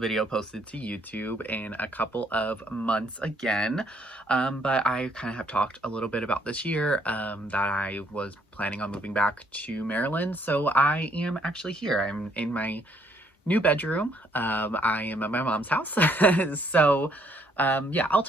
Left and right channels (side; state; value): both; normal; correlation 0.68